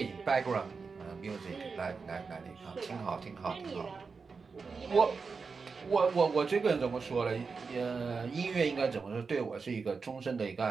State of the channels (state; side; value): quieter; left; 4.9 dB